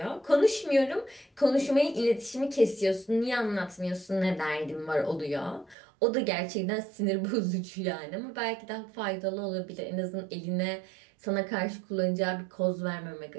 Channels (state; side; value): drops out; left; at 5.8 s